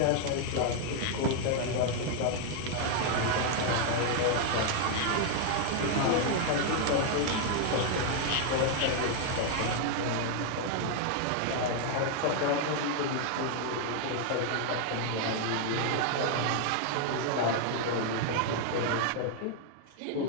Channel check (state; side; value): different; both; correlation 0.00